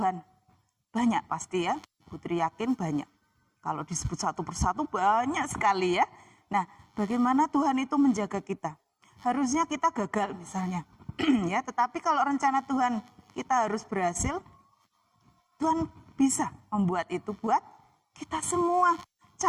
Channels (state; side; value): identical; both; correlation 1.00